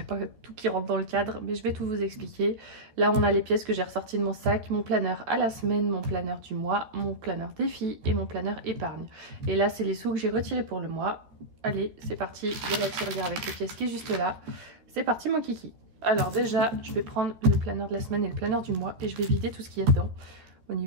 pas tout qui rentre dans le cadre, mais je vais tout vous expliquer. Là on a les pièces que j'ai ressorties de mon sac, mon planeur à la semaine, mon planeur du mois, mon planeur défi et mon planeur épargne. Et là c'est les sous que j'ai retirés pour le mois. Allez, c'est parti, il y a la tirelire avec les pièces qui est juste là. C'est parti mon kiki. Alors déjà, je vais prendre le planeur de la semaine et le planeur du mois et je vais vider tout ce qu'il y a dedans. Au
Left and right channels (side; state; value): left; late; 13 ms